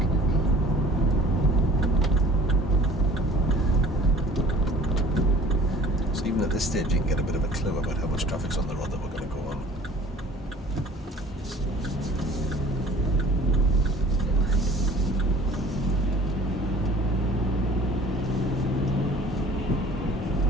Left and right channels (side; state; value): both; normal; correlation 0.49